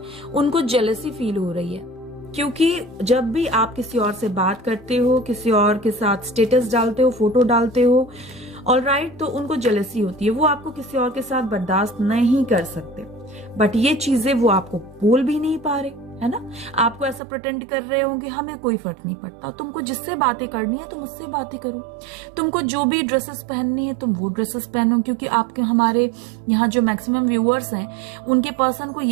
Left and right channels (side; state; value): left; drops out; at 17.2 s